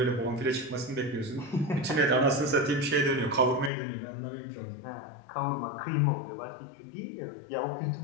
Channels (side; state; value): right; drops out; at 3.7 s